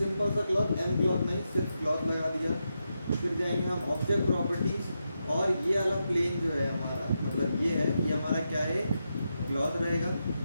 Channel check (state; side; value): inverted; both; correlation -0.86